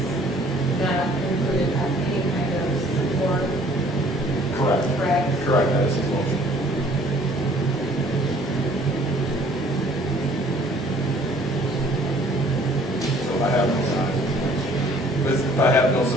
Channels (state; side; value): normal; both; correlation 0.56